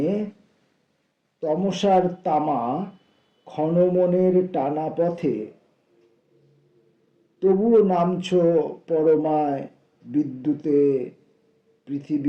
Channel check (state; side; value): identical; both; correlation 1.00